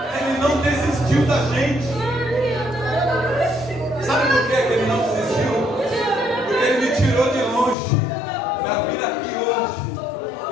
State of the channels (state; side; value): drops out; right; at 7.8 s